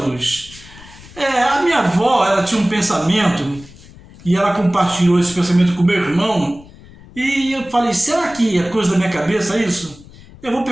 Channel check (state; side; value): noise; left; rumble, 21 dB below the sound